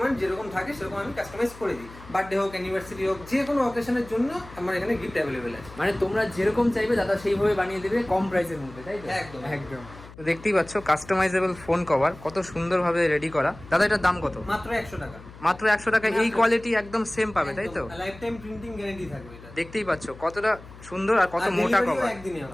যেরকম থাকে সেরকম আমি কাস্টমাইজ করে দিই। বার্থডে হোক, অ্যানিভার্সারি হোক, যে কোনো অকেশনের জন্য আমার এখানে গিফট অ্যাভেলেবেল আছে। মানে তোমরা যেরকম চাইবে দাদা সেইভাবে বানিয়ে দেবে, কম প্রাইসের মধ্যে, তাই তো? একদম একদম। তো দেখতেই পাচ্ছ কাস্টমাইজেবল ফোন কভার কত সুন্দরভাবে রেডি করা। দাদা এটার দাম কত? মাত্র 100 টাকা। মাত্র 100 টাকা। এই কোয়ালিটি একদম সেম পাবে, তাই তো? লাইফ টাইম প্রিন্টিং গ্যারান্টি থাকবে এটা। দেখতেই পাচ্ছ কতটা সুন্দর আর কত মোটা কভার। একদিনই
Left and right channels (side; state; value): left; noise; hum, 18 dB below the sound